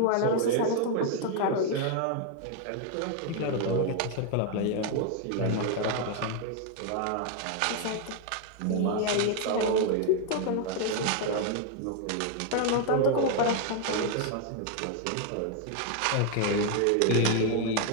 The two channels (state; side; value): different; both; correlation 0.00